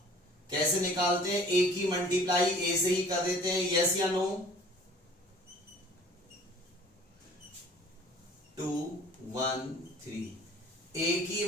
कैसे निकालते हैं, ए की मल्टीप्लाई ए से ही कर देते हैं, यस या नो, 2 1 3, ए की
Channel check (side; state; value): both; normal; correlation 0.49